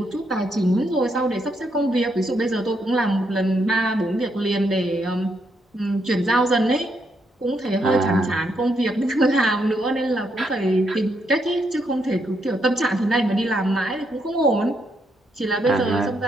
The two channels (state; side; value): normal; both; correlation 0.77